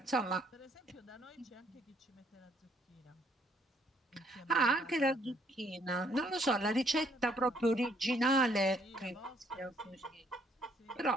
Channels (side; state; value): both; normal; correlation 0.67